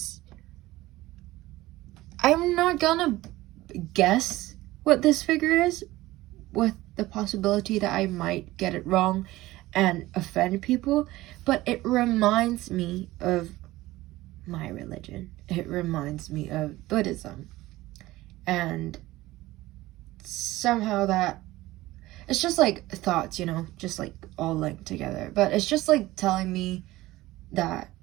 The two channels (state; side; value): quieter; left; 17.7 dB